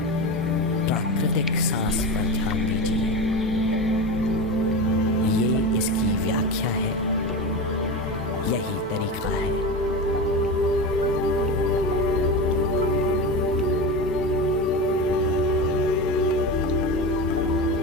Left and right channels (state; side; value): normal; both; correlation 0.23